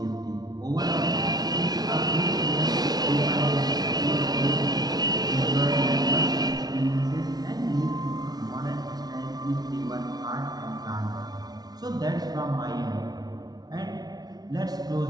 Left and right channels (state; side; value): late; left; 0.19 ms